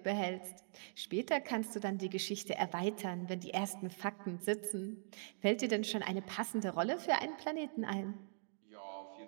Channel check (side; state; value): left; silent; digital silence